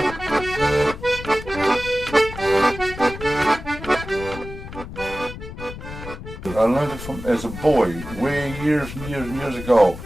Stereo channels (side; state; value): left; noise; rumble, 11 dB below the sound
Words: learned it from as a boy, way years and years and years ago.